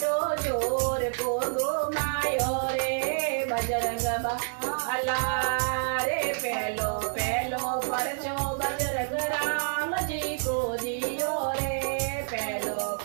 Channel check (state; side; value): silent; left; digital silence